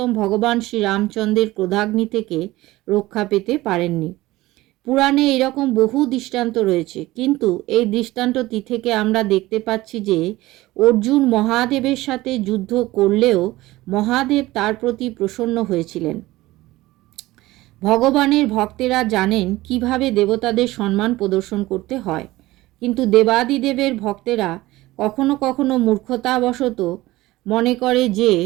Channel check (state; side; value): quieter; left; 18.1 dB